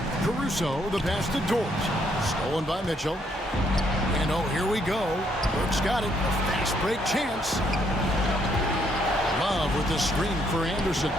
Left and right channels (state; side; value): normal; both; correlation 0.71